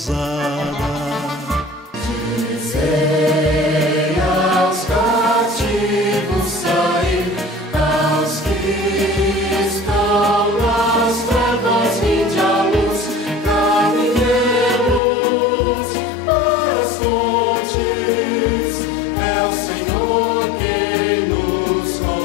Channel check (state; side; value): drops out; right; at 15.0 s